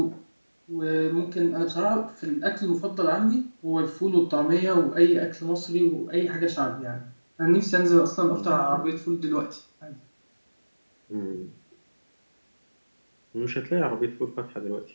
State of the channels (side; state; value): both; inverted; correlation -1.00